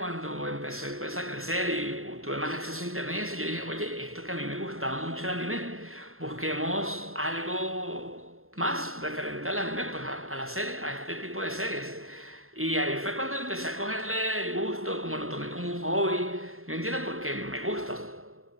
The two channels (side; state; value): left; late; 0.61 ms